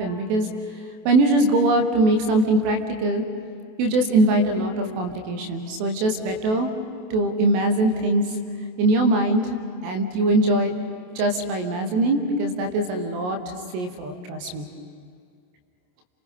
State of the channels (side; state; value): left; late; 28 ms